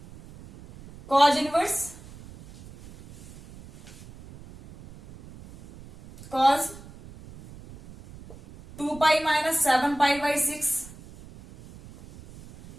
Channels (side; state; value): right; noise; rumble, 19 dB below the sound